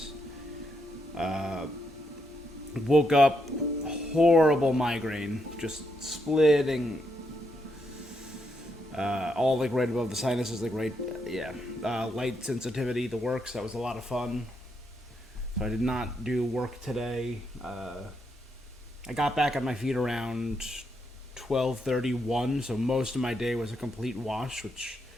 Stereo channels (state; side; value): normal; both; correlation 0.79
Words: Woke up, horrible migraine, just splitting, all like right above the sinuses, like right, yeah. Light sensitivity, the works, that was a lot of fun. So I did not do work today. I got back on my feet around 12:31, so most of my day was a complete wash, which